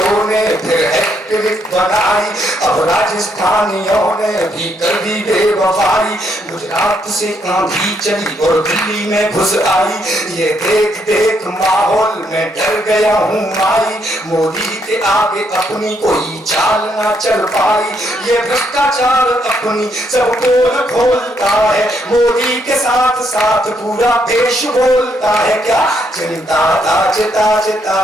ने फिर हैट्रिक बनाई, अब राजस्थानियों ने भी कर दी बेवफाई। गुजरात से आंधी चली और दिल्ली में घुस आई, ये देख देख माहौल में डर गया हूँ माई। मोदी के आगे अपनी कोई चाल ना चल पाई, ये भ्रष्टाचार अपनी सब पोल खोलता है। मोदी के साथ साथ पूरा देश बोलता है क्या, चिंता ताज ताज ता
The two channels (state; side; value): normal; both; correlation 0.74